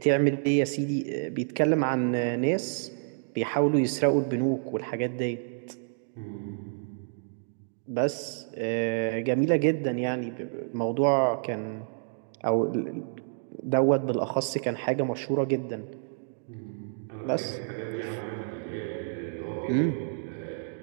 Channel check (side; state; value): left; silent; digital silence